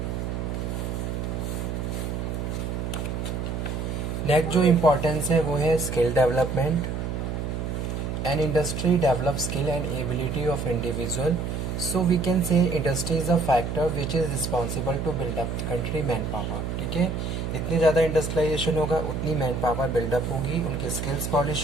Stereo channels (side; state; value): right; noise; hum, 3 dB below the sound